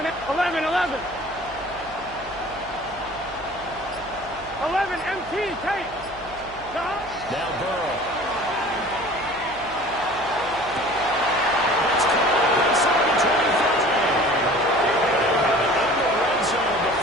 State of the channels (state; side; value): noise; right; hum, 19 dB below the sound